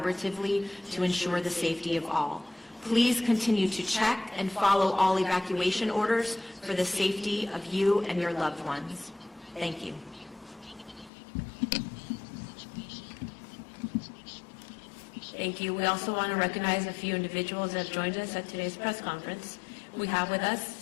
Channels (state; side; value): drops out; right; at 11.1 s